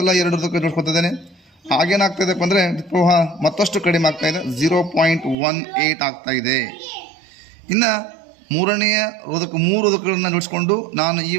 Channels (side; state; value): left; drops out; at 5.4 s